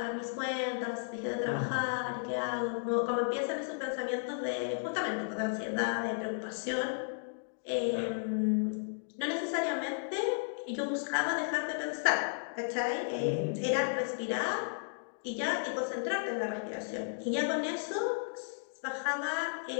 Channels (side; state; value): right; silent; digital silence